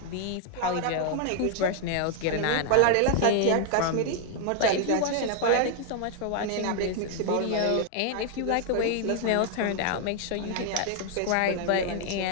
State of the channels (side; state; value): both; different; correlation 0.00